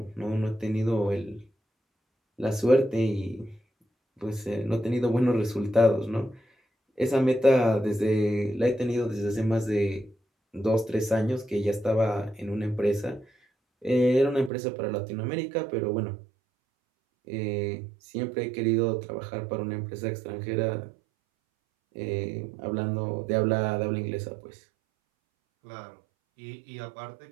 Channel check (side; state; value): left; drops out; at 14.5 s